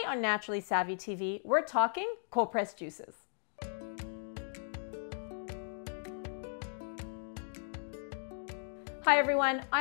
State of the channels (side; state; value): right; silent; digital silence